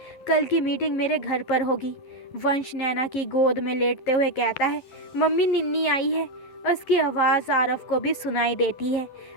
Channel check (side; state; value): right; late; 12 ms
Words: कल की मीटिंग मेरे घर पर होगी। वंश नैना की गोद में लेटते हुए कहता है, मम्मी निन्नी आई है। उसकी आवाज़ आरव को भी सुनाई देती है।